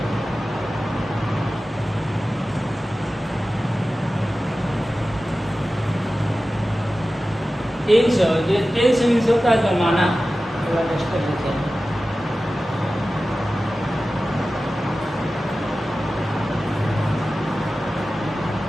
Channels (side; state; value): both; normal; correlation 0.95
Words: टेंस मीन्स होता है जमाना। थोड़ा टेस्ट कर लेते हैं।